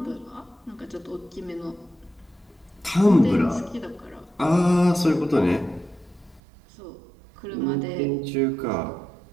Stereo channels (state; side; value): drops out; left; at 6.4 s